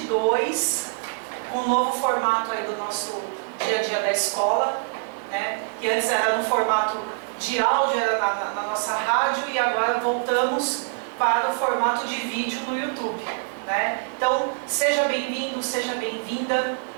com um novo formato aí do nosso dia a dia da escola, né? Que antes era no formato de áudio, era na nossa rádio, e agora voltamos para o formato de vídeo no YouTube, né? Então, seja bem-vindo, seja bem-vinda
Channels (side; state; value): left; silent; digital silence